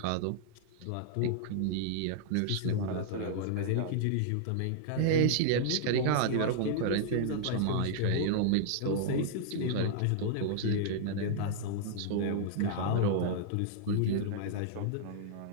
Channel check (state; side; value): different; both; correlation -0.01